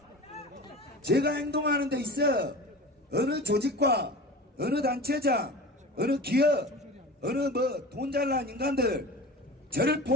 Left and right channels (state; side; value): normal; both; correlation 0.35